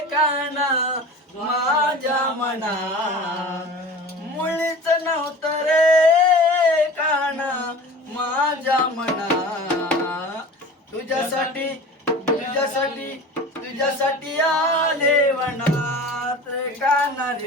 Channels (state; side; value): normal; both; correlation 0.38